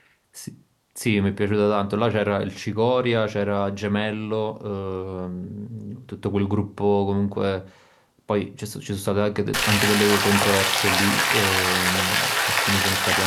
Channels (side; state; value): both; identical; correlation 1.00